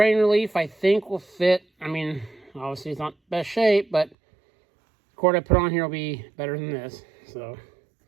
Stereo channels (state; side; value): drops out; left; at 4.2 s